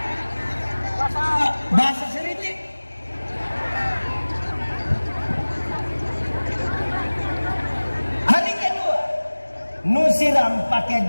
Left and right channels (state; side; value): inverted; both; correlation -1.00